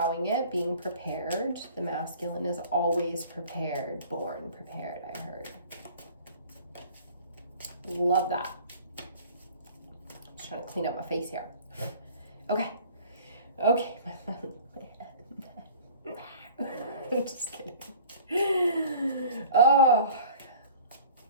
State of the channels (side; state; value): both; inverted; correlation -0.47